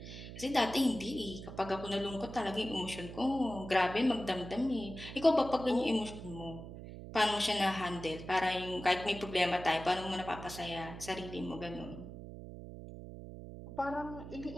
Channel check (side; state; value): right; noise; hum, 11 dB below the sound